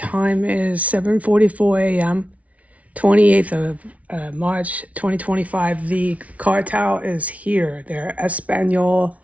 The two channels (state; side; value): late; left; 0.067 ms